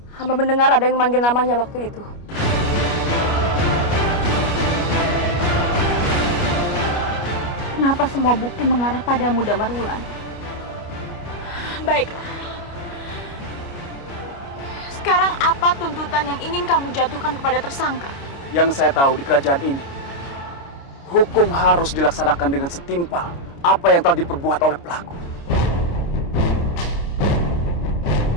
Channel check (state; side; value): late; right; 29 ms